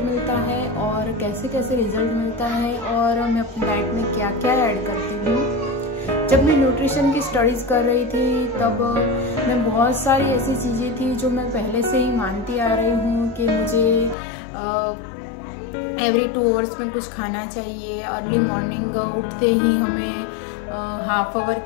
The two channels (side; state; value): right; drops out; at 14.2 s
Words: मिलता है और कैसे कैसे रिजल्ट मिलता है और मैं अपनी डाइट में क्या क्या ऐड करती हूँ। जब मैं न्यूट्रिशन की स्टडीज़ कर रही थी तब मैं बहुत सारी ऐसी चीज़ें थी जो मैं पहले से ही मानती आ रही हूँ कि मुझे एवरी 2 आवर्स में कुछ खाना चाहिए। अर्ली मॉर्निंग उठते ही हमें हाफ आवर